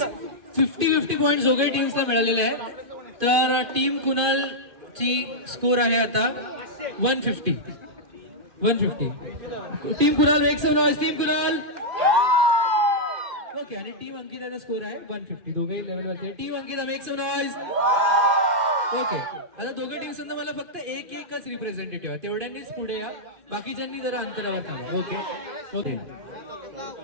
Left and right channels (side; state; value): left; late; 2.5 ms